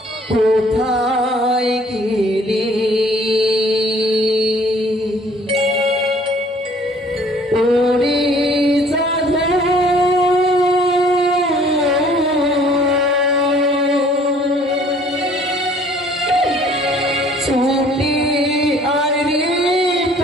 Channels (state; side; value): normal; both; correlation 0.56